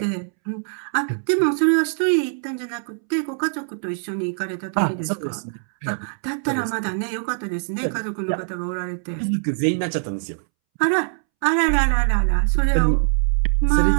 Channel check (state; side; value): silent; left; 64 dB below the other